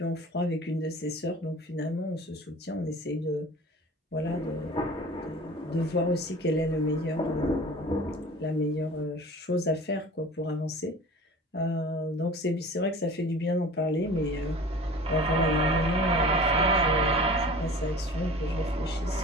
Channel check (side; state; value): both; normal; correlation 0.41